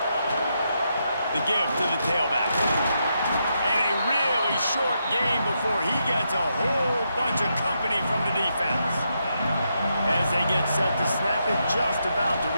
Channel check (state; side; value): inverted; both; correlation -0.82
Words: The give to the tailback. And a really short game before he gets a whole bunch of company from the defense. As they get set to snap it, just about to